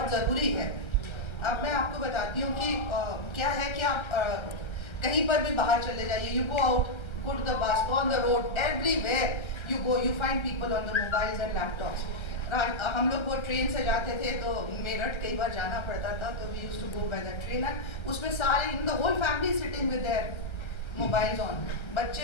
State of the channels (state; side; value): late; right; 1.3 ms